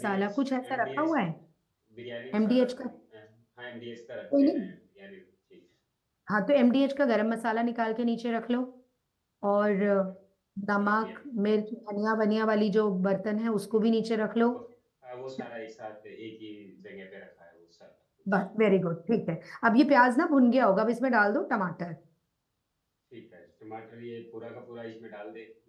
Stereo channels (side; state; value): both; identical; correlation 1.00